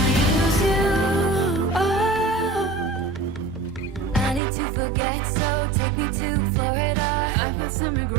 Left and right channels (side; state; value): left; drops out; at 4.4 s